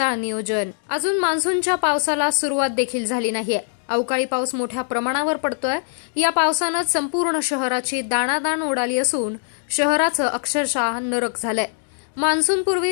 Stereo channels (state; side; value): silent; right; 64 dB below the other